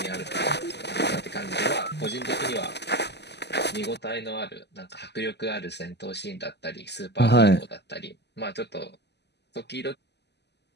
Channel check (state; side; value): late; right; 0.50 ms